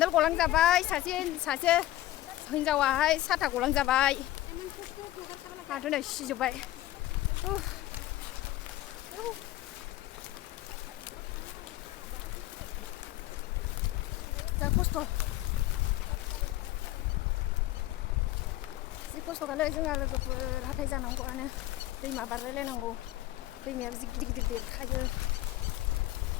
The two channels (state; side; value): quieter; right; 15.3 dB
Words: गलांजाबाय सासे हिनजावाहाय साथा गलांजाबाय आंथ' नै सिजोब्बाय। जा खस्थ' जि खस्थ'खालै जोंहा लोगोफोर हाथाय जानांगौआनो दैमा बारलायलायनांगौ। दैमायाबो जि गिदिर गिदिर देरखायो